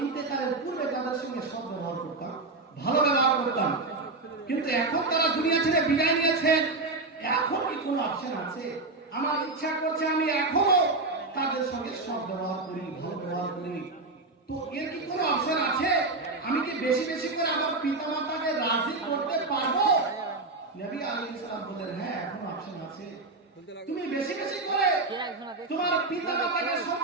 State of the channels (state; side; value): quieter; left; 3.4 dB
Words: ইন্তেকালের পূর্বে তাদের সঙ্গে সৎ ব্যবহার করতাম, ভালো ব্যবহার করতাম। কিন্তু এখন তারা দুনিয়া ছেড়ে বিদায় নিয়েছেন, এখন কি কোনো অপশন আছে? আমার ইচ্ছা করছে আমি এখনো তাদের সঙ্গে সৎ ব্যবহার করি, ভালো ব্যবহার করি। তো এর কি কোনো অপশন আছে? আমি কি বেশি বেশি করে আমার পিতা মাতাকে রাজি করতে পারবো? নবী আলাইহিস সালাম বললেন, হ্যাঁ, এখন অপশন আছে। তুমি বেশি বেশি করে তোমার পিতা মাতাকে